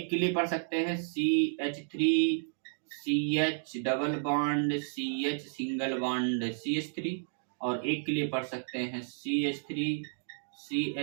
के लिए पढ़ सकते हैं CH3CH double bond CH single bond CH3, और एक के लिए पढ़ सकते हैं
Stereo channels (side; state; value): left; silent; digital silence